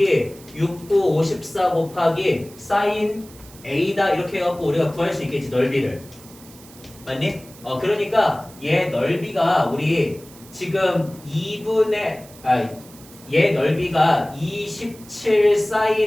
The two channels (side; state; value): right; noise; hiss, 22 dB below the sound